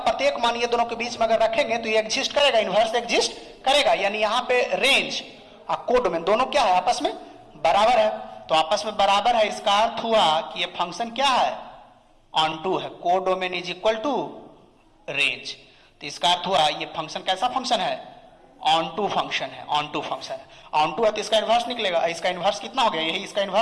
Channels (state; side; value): identical; both; correlation 1.00